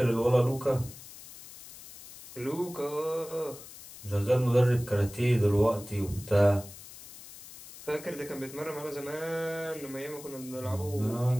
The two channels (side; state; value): left; noise; hiss, 16 dB below the sound